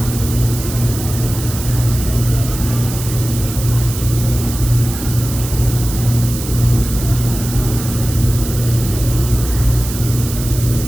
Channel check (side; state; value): right; noise; hiss, 9 dB below the sound